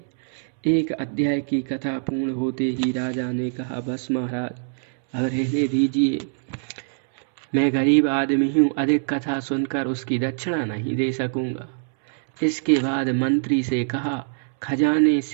एक अध्याय की कथा पूर्ण होते ही राजा ने कहा, बस महाराज अब रहने दीजिए, मैं गरीब आदमी हूँ, अधिक कथा सुनकर उसकी दक्षिणा नहीं दे सकूंगा। इसके बाद मंत्री से कहा, खजाने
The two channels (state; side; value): silent; left; 63 dB below the other